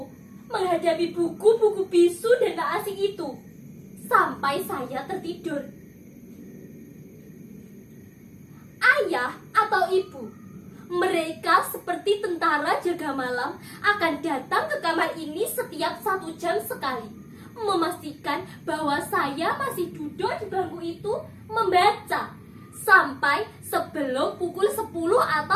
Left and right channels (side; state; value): both; identical; correlation 1.00